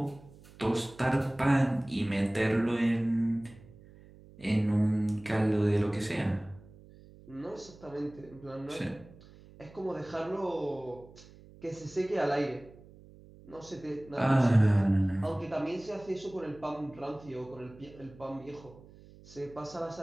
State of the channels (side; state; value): right; noise; hum, 22 dB below the sound